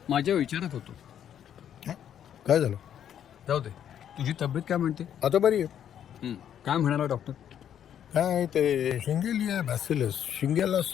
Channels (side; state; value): right; quieter; 9.6 dB